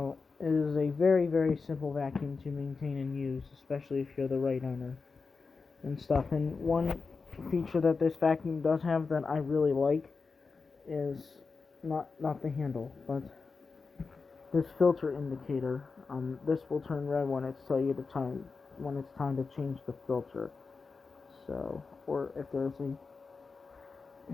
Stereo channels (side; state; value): right; quieter; 4.6 dB